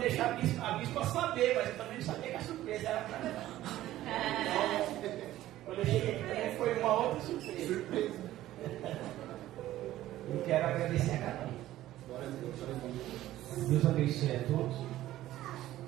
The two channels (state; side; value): quieter; left; 14.5 dB